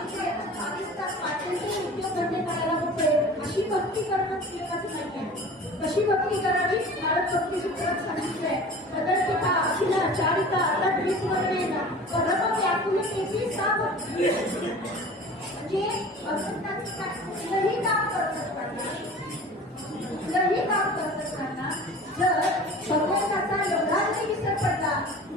22 तास पाठ्यांचे उद्योग धंदे करायला होते. अशी भक्ती करणं उपयोगाचं नाही आहे. कशी भक्ती करावी भारत भक्ती सूत्रात सांगितलंय. सदर्पिता अखिला चारिता तद्विस्मरणेन परम व्याकुलतेची सा भक्ती. म्हणजे भगवंताचं कुठलंही काम करत असताना जर भगवंताचा एवढा जरी विसर पडला,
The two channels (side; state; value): both; normal; correlation 0.40